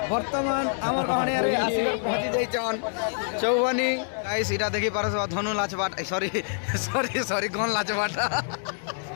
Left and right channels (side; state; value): right; silent; 61 dB below the other